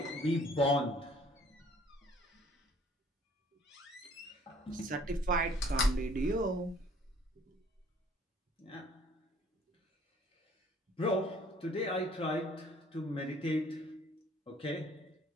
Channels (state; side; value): normal; both; correlation 0.57